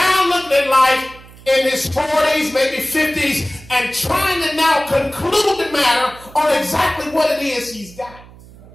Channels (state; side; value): noise; right; hum, 21 dB below the sound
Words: looking at life in his 40s, maybe 50s, and trying to now conclude the matter on exactly what it is he's got.